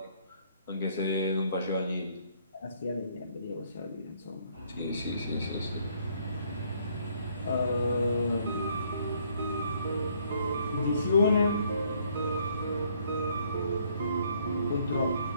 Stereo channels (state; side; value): inverted; both; correlation -0.66